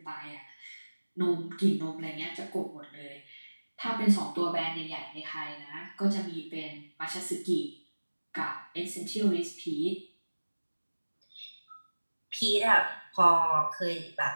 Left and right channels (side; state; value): both; inverted; correlation -1.00